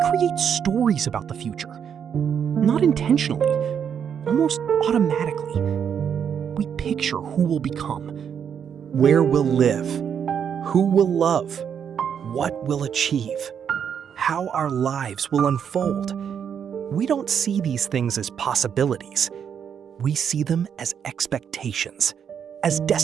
stories about the future. Not intentionally, almost automatically. We picture who we'll become, where we'll live, who we'll love, what we'll achieve, how our lives will unfold. We don't see these things as possibilities. We see them as expectations, as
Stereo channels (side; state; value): left; quieter; 7.9 dB